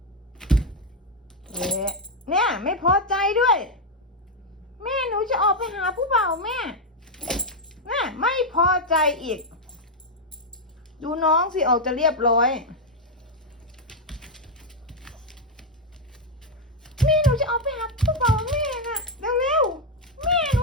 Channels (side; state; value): both; normal; correlation 0.03